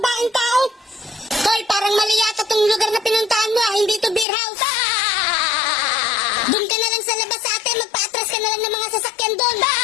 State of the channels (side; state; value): right; drops out; at 4.2 s